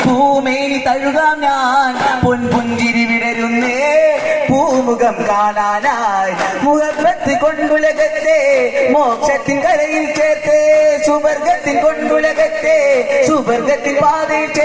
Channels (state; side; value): identical; both; correlation 1.00